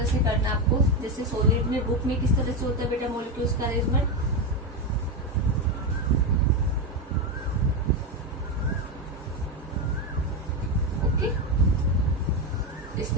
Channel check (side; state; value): both; normal; correlation 0.11